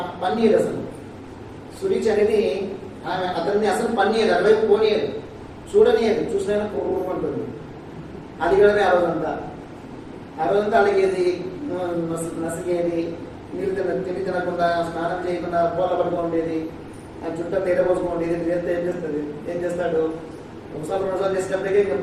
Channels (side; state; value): both; identical; correlation 1.00